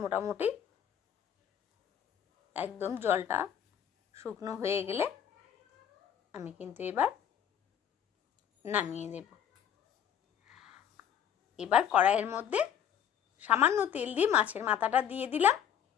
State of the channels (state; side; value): quieter; right; 9.1 dB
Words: মোটামুটি একদম জলটা শুকনো হয়ে গেলে আমি কিন্তু এবার নামিয়ে দেব। এবার কড়াইয়ের মধ্যে সামান্য তেল দিয়ে মাছের মাথাটা দিয়ে দিলাম,